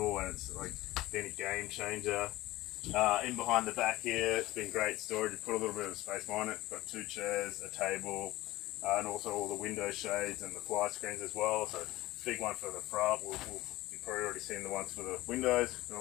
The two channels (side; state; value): right; quieter; 17.8 dB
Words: and it's like been a game changer. In behind the back here, it's been great storage. You put a little bit of space behind it. Got 2 chairs, a table, and also all the window shades and the fly screens as well. So big one for the front. You've probably already seen the ones for the windows. And